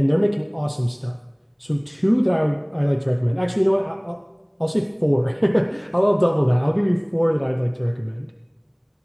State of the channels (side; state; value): both; identical; correlation 1.00